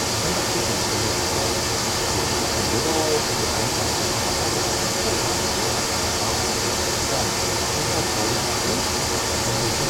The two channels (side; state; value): both; identical; correlation 1.00